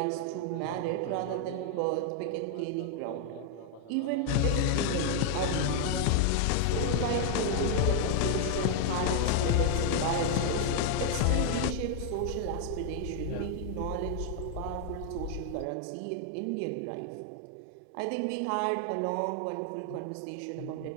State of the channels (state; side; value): different; both; correlation 0.00